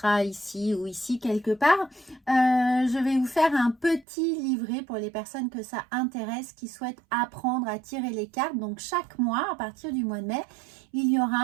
ici ou ici quelque part. Je vais vous faire un petit livret pour les personnes que ça intéresse, qui souhaitent apprendre à tirer les cartes. Donc chaque mois, à partir du mois de mai, il y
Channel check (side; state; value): left; drops out; at 4.0 s